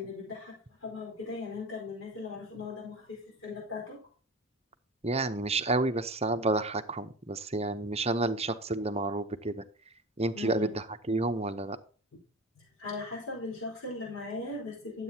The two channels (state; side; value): normal; both; correlation 0.31